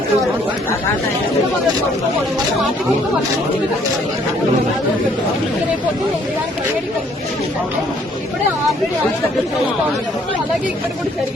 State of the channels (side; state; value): both; normal; correlation 0.63